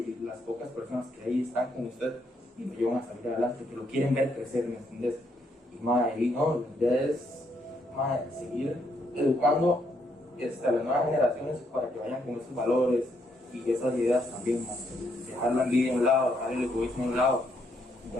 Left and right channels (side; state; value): both; normal; correlation 0.74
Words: las pocas personas que ahí están con usted y lo llevan a salir adelante, que lo quieren ver crecer, ¿me entiendes? Y la idea es seguir educando a las nuevas generaciones para que vayan con esos valores y esas ideas también, dejar la envidia a un lado, dejar el egoísmo a un lado y